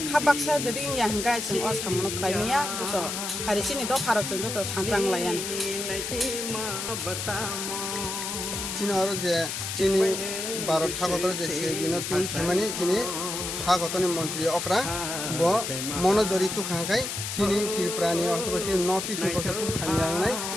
खा बाक्सा যদি इन्या हंगाय जों अ सामुनो खायमिया जत हारिसिनि द फाराव जों जत थांजां लायान चीनहरु जे चीनी भारत हागतर जे सेगिनो तुम सेमानि चीनी हागतनि मन्त्री अफ्रा ब मनोजरी तुखांखाय चीनी त्रिपुरानि अथवा चीन नॉर्थ ईस्ट प्रशासन हामयांगनाय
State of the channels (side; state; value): left; noise; hiss, 4 dB below the sound